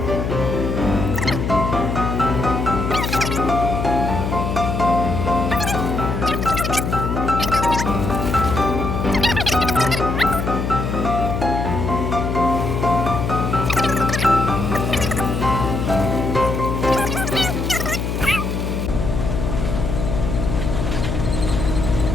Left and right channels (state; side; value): noise; left; hum, 1 dB below the sound